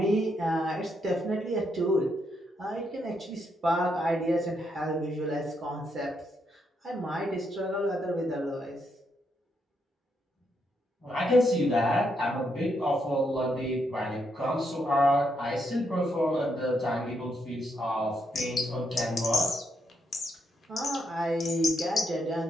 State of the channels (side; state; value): both; normal; correlation 0.78